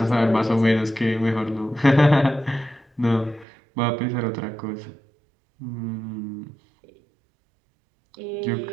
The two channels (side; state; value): left; drops out; at 3.5 s